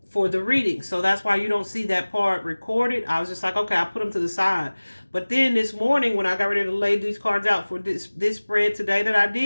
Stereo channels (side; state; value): both; inverted; correlation -1.00